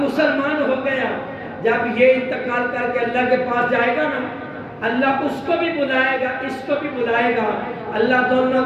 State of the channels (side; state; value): both; identical; correlation 1.00